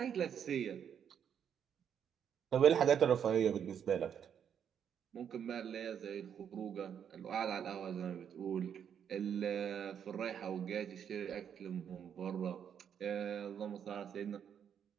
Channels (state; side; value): quieter; left; 8.3 dB